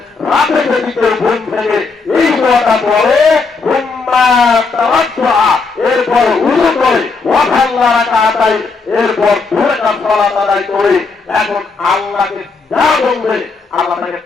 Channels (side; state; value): right; quieter; 4.4 dB